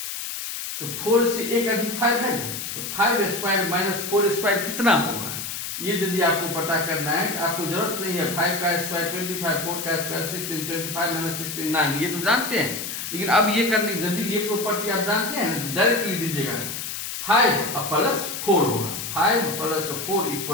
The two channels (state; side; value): noise; left; hiss, 6 dB below the sound